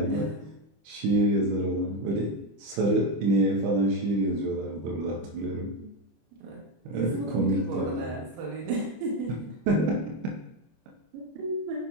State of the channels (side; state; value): left; late; 25 ms